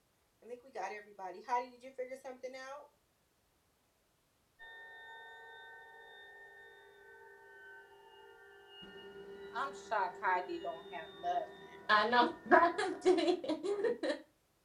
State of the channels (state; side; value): identical; both; correlation 1.00